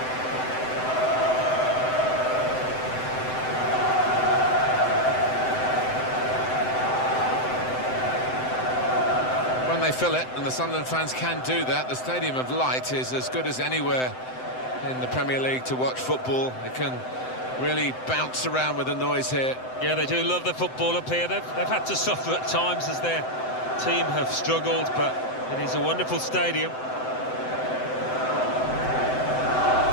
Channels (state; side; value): late; right; 7.8 ms